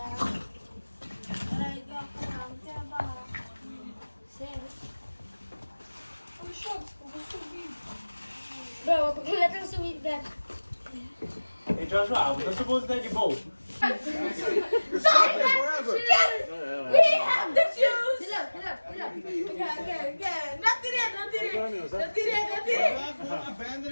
Bro, let us subir that. Hey Joshua, we're not supposed to take a boat. We have the shoes. Get up. Not today.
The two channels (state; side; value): inverted; both; correlation -1.00